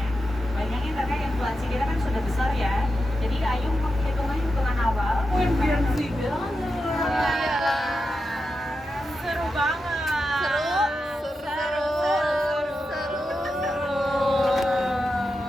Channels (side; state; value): both; normal; correlation 0.89